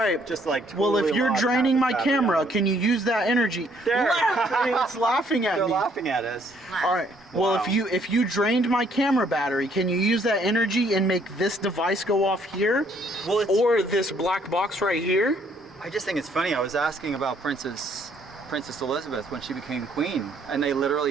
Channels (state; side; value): normal; both; correlation 0.66